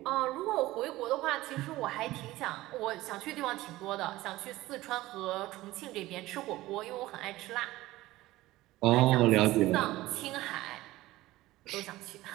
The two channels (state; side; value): quieter; left; 17.5 dB